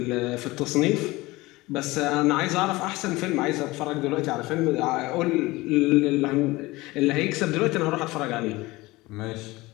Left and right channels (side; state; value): right; quieter; 20.6 dB